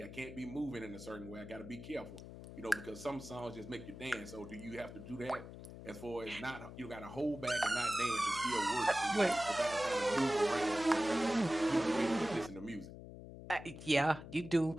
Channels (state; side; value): noise; left; hum, 13 dB below the sound